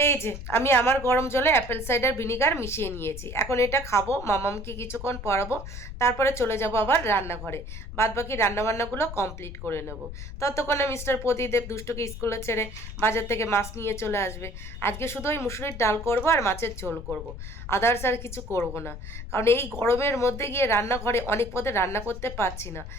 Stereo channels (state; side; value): noise; left; rumble, 10 dB below the sound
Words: যে আমি আমার গরম জলে অ্যাপেল সাইডার ভিনিগার মিশিয়ে নিয়েছি। এখন এটা খাবো, মামামকে কিছুক্ষণ পড়াবো, তারপরে চলে যাব আবার রান্নাঘরে। বাদ বাকি রান্নাবান্নাগুলো কমপ্লিট করে নেব। ততক্ষণে মিস্টার প্রদীপ দুষ্টুকে স্কুলে ছেড়ে বাজার থেকে মাছ নিয়ে চলে আসবে। আজকে শুধু ওই মুসুরির ডাল করব আর মাছের ঝোল করব, আদার্স আর কিছু করব না। কারণ এই গরমের মধ্যে গিয়ে রান্নাঘরে অনেক পদে রান্না করতে পারছি না।